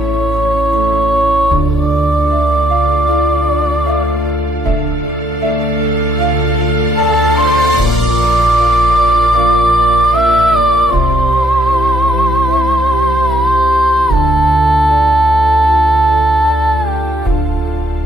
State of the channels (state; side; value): normal; both; correlation 0.70